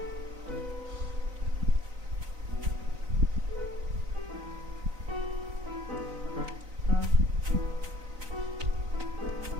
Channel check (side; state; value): left; late; 3.9 ms